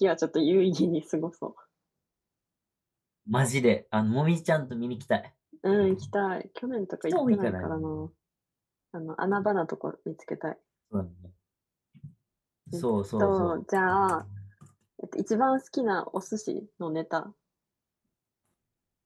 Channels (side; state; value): both; identical; correlation 1.00